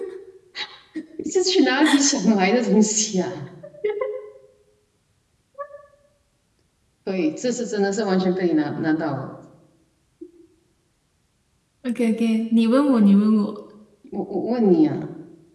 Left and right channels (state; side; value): identical; both; correlation 1.00